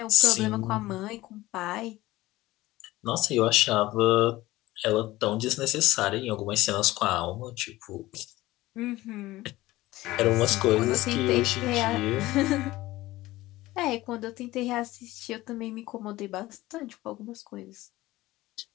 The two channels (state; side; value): quieter; right; 17.8 dB